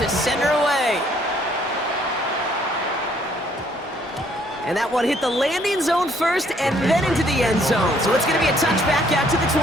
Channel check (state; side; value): normal; both; correlation 0.65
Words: send her away. And that one hit the landing zone first and then into the end zone. So it's going to be a touchback out to the